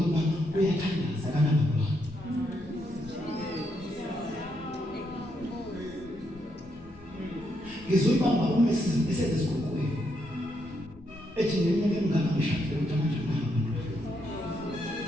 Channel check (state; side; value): normal; both; correlation 0.78